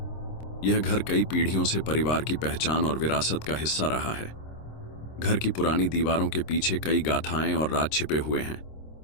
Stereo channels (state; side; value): late; right; 26 ms